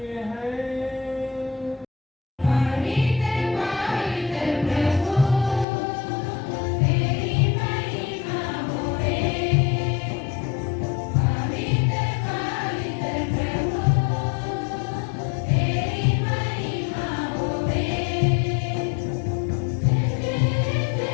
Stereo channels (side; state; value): right; drops out; at 5.7 s